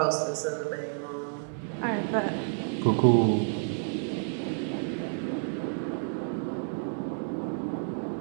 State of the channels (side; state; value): left; silent; digital silence